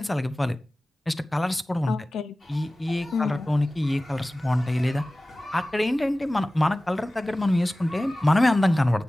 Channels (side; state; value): both; normal; correlation 0.97